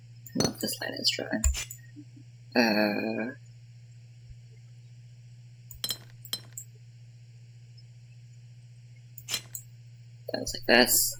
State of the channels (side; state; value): both; identical; correlation 1.00